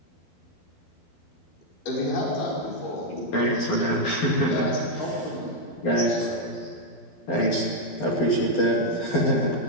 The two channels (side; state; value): right; late; 12 ms